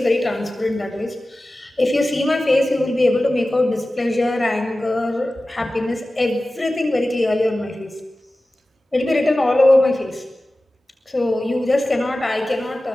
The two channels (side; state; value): both; normal; correlation 0.96